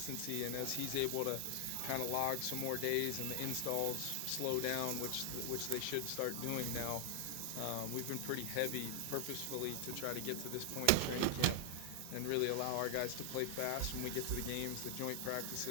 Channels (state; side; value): different; both; correlation 0.00